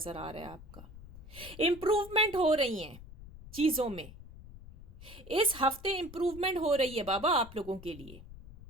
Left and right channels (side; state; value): left; noise; rumble, 16 dB below the sound